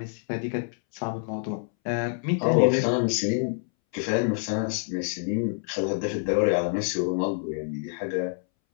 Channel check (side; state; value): right; silent; 60 dB below the other